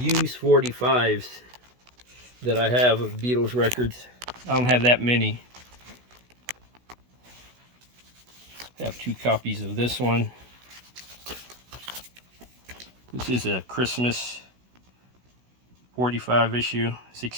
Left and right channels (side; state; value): left; late; 16 ms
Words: 45s that I have of Beatles records. I don't have that many. I have 2 copies of this one. This is a Christmas 45 issue,